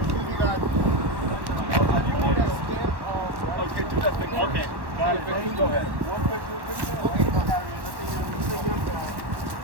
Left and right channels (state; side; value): late; left; 1.1 ms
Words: Okay, got it. Go ahead.